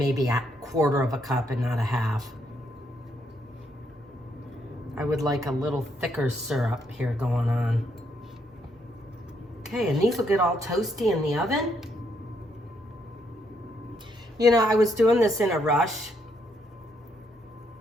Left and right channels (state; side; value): normal; both; correlation 0.75